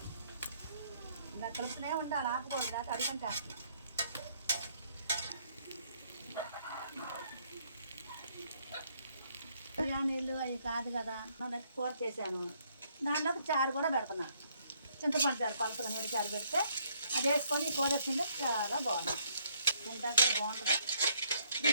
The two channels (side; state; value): both; inverted; correlation -0.68